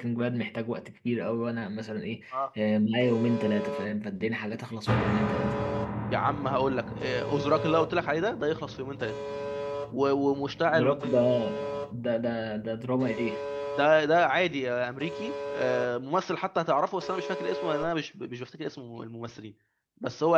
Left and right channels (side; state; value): both; identical; correlation 1.00